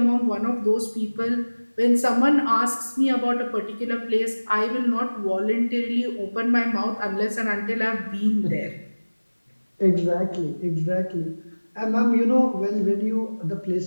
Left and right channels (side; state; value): both; inverted; correlation -1.00